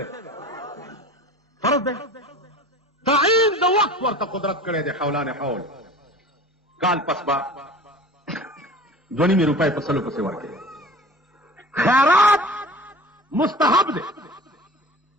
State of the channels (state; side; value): normal; both; correlation 0.40